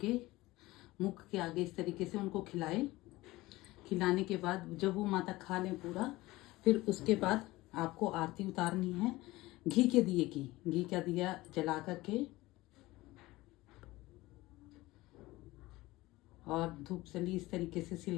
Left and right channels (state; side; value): quieter; right; 19.2 dB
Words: के मुख के आगे इस तरीके से उनको खिलाएं। खिलाने के बाद जब वो माता खा लें पूरा, फिर उसके बाद आपको आरती उतारनी है घी के दिए की। घी का दिया जला करके और धूप सली इस तरीके से